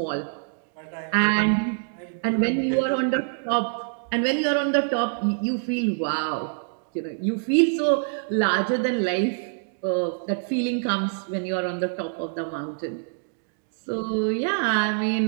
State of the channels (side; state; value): left; silent; digital silence